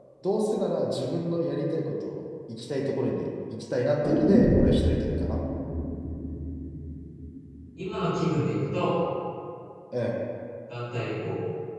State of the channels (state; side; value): identical; both; correlation 1.00